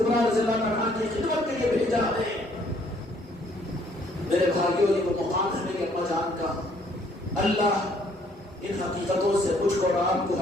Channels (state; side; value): normal; both; correlation 0.64